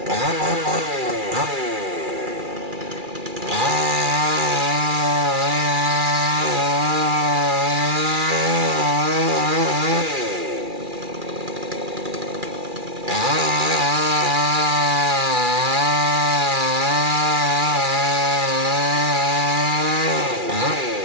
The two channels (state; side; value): late; left; 2.4 ms